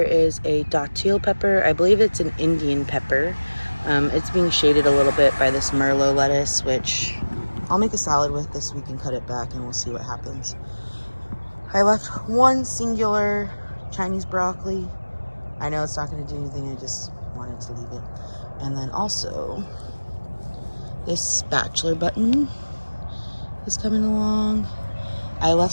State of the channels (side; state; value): both; inverted; correlation -1.00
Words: is a datil pepper. I believe it's an Indian pepper. It's being shaded a little bit by this Merlot lettuce, which I'll make a salad with this week and cut it back and we'll see what happens. I left one singular Chinese broccoli. I know it's not going to do anything, I just wanted to leave it. And then also, this spatula button is coming along. I left